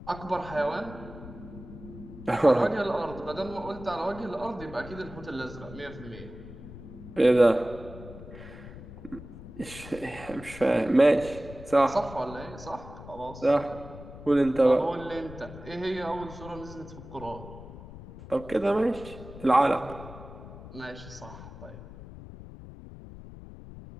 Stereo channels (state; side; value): noise; left; rumble, 14 dB below the sound